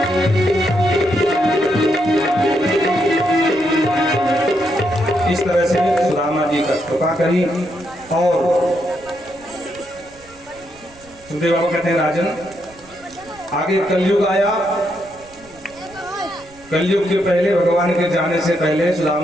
इस तरह से सुदामा जी का कृपा करी। और सुखदेव बाबा कहते हैं राजन, आगे कलयुग आया। कलयुग के पहले, भगवान के जाने से पहले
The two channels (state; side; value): noise; right; rumble, 26 dB below the sound